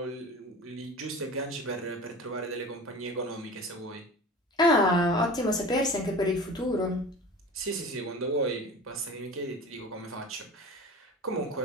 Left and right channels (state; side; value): normal; both; correlation 0.36